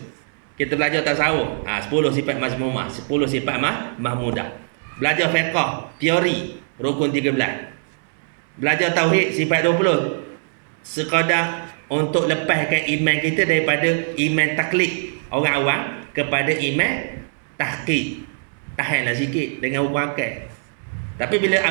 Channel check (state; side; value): silent; left; 64 dB below the other